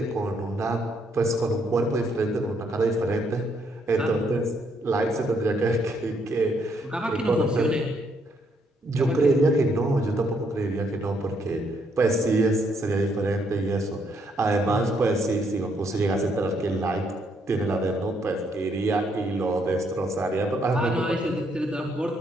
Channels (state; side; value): normal; both; correlation 0.73